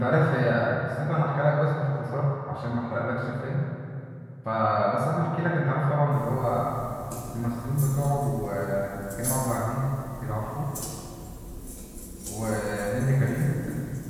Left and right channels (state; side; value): identical; both; correlation 1.00